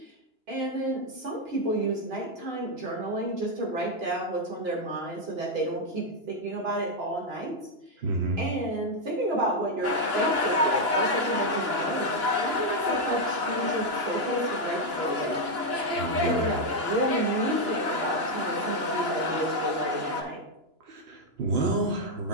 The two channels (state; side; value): late; left; 2.9 ms